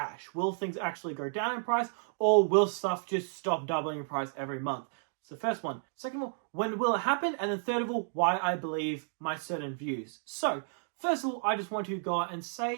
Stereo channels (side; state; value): left; silent; digital silence